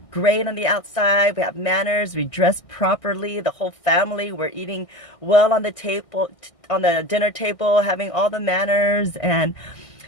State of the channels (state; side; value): late; right; 1.6 ms